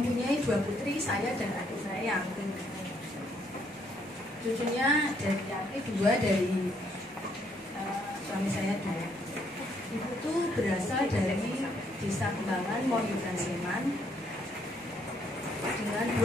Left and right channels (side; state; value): both; normal; correlation 0.70